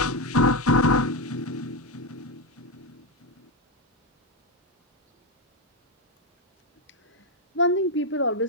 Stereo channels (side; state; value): both; normal; correlation 0.07